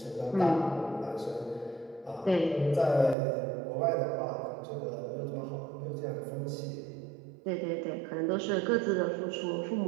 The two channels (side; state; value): left; drops out; at 3.2 s